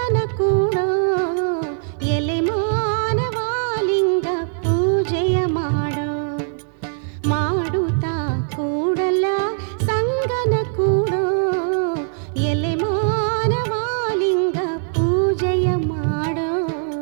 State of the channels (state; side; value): silent; left; 59 dB below the other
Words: ಕೂಡೋ. ಎಲೆ ಮಾನವಾಲಿಂಗ ಪೂಜೆಯ ಮಾಡೋ, ಮಾಡುತ್ತಾ ಕೂಡಲ ಸಂಗನ ಕೂಡೋ. ಎಲೆ ಮಾನವಾಲಿಂಗ ಪೂಜೆಯ ಮಾಡೋ.